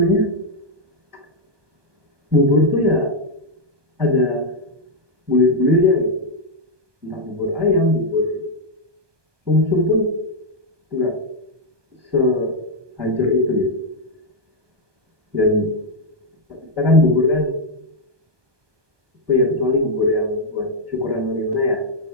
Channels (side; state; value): left; late; 1.2 ms